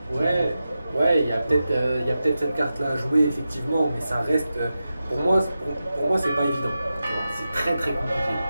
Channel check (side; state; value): both; inverted; correlation -0.92